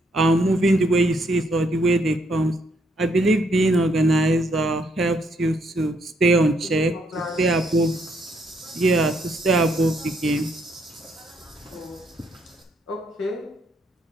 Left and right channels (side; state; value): both; normal; correlation 0.73